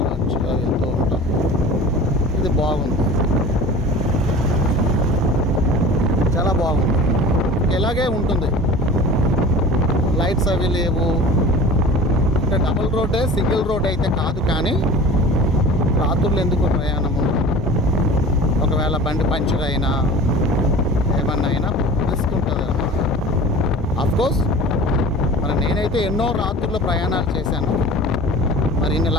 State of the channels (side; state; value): both; normal; correlation 0.39